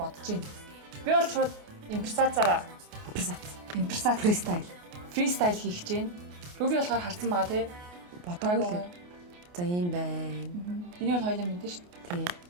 бодож байна. Би бол шууд импресацаараа фристайл хийх гэж байна. Руби болохоор харсан байгаа тий. Бодоогүй. За ийм байна. Энийг бол хоёулаа мэдэн шүү дээ. Тий.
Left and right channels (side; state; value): left; late; 28 ms